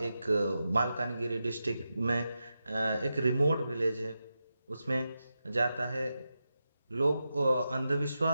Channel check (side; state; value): both; inverted; correlation -0.89